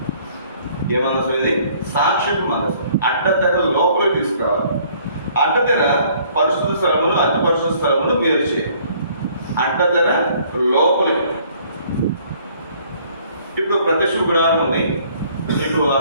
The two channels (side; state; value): both; inverted; correlation -0.59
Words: ఏ మందసం ఇది? సాక్ష్యపు మందసం. అడ్డతెర లోపలికి తీసుకురావాలి. అడ్డతెర పరిశుద్ధ స్థలమును అతి పరిశుద్ధ స్థలమును వేరు చేయాలి. అడ్డతెర లోపలికి. ఇప్పుడు ప్రత్యక్ష గుడారం ఉంది, మీకు